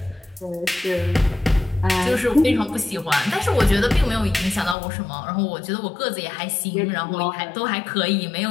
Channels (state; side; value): drops out; right; at 4.8 s